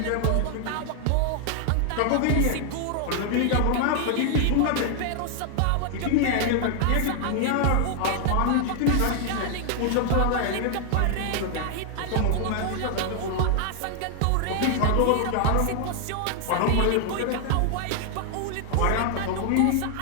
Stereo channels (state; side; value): different; both; correlation 0.00